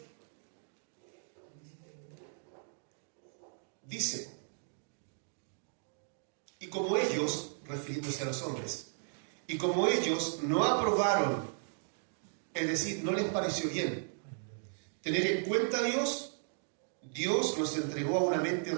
dice: y como ellos, refiriéndose a los hombres, y como ellos no aprobaron, es decir, no les pareció bien tener en cuenta a Dios, Dios nos entregó a una mente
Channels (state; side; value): silent; left; digital silence